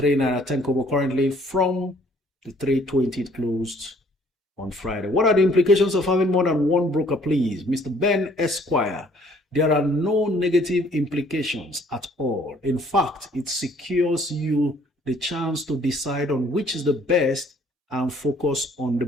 10 kobo currently from the 320 it closed on Friday. What are the implications of having more than one broker, please? Mr. Ben Esquire. There are no negative implications at all. In fact, it secures you the chance to decide on which is the best and focus on the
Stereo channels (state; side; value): normal; both; correlation 0.60